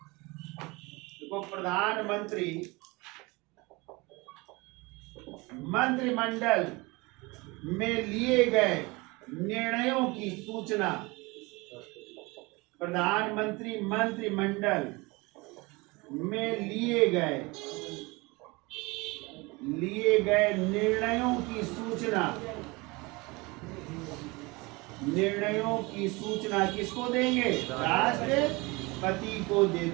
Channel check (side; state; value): left; quieter; 24.8 dB